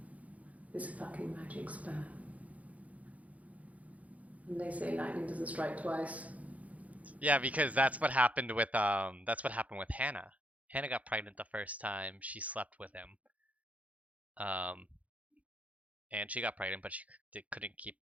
This fucking magic sperm. And they say lightning doesn't strike twice. Yeah, because that's what happened with Hannah. Hannah got pregnant the first time she slept with him. And she got pregnant, but she couldn't keep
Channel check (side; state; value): left; late; 0.069 ms